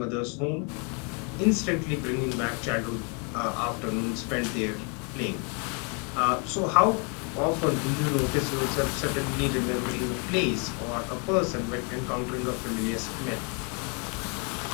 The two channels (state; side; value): quieter; right; 35.8 dB